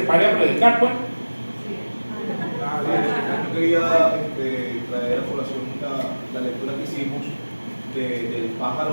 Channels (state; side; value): inverted; both; correlation -1.00